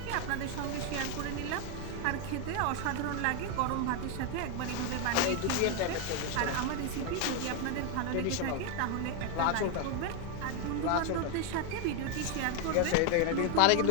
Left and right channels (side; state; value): both; different; correlation 0.01